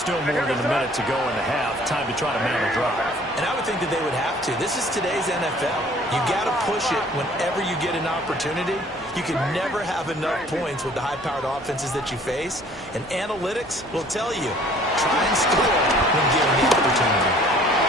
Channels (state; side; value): normal; both; correlation 0.54